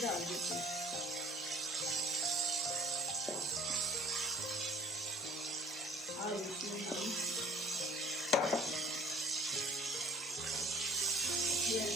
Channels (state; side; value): normal; both; correlation 0.52